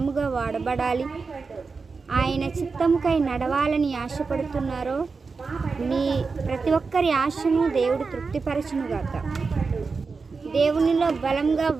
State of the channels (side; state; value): left; quieter; 4.6 dB